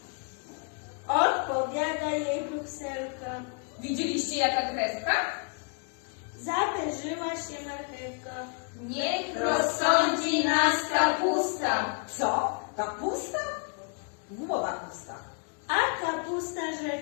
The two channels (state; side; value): quieter; right; 36.4 dB